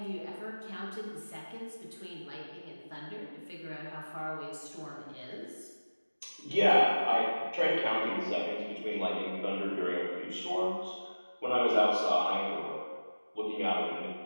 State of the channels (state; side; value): inverted; both; correlation -1.00